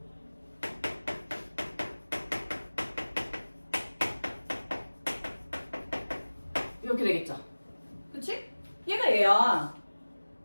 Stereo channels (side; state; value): both; inverted; correlation -1.00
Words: 이렇게 되겠죠. 그치? 얘가 얘야.